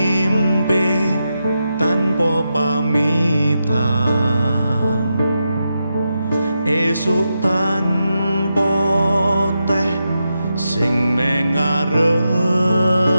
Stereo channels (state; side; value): inverted; both; correlation -0.87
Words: tanpa pamitan esuk tanpa teh sing ning ngarepan